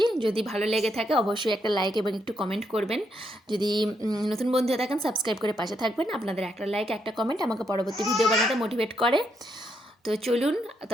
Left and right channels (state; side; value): normal; both; correlation 0.78